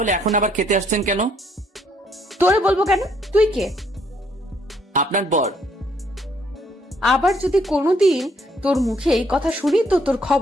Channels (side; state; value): both; normal; correlation 0.68